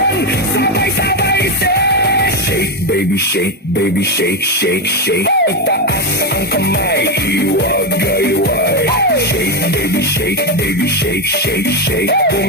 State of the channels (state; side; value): normal; both; correlation 0.09